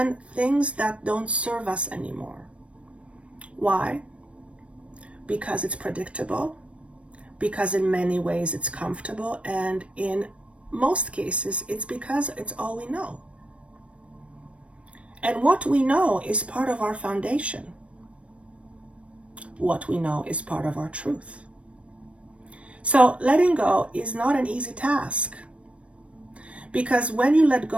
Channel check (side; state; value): left; late; 0.062 ms